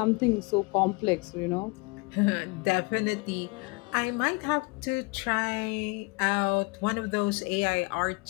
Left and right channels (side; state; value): right; quieter; 27.9 dB